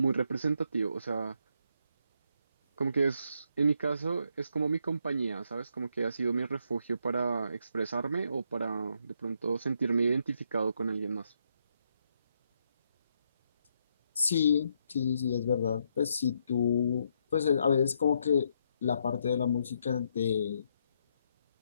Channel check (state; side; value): inverted; both; correlation -0.76